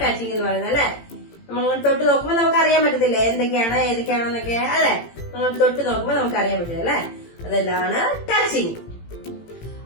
ടച്ചിങ് എന്ന് പറയുന്നത് അല്ലെ. നമ്മളിങ്ങനെ തൊട്ട് നോക്കുമ്പോൾ നമുക്ക് അറിയാൻ പറ്റത്തില്ല ഏതൊക്കെയാണെന്നൊക്കെ അല്ലെ. നമ്മൾ തൊട്ട് നോക്കുമ്പോൾ നമുക്ക് അറിയാൻ പറ്റില്ല അല്ലെ. അതെല്ലാം ടച്ചിങ്.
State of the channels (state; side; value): late; right; 18 ms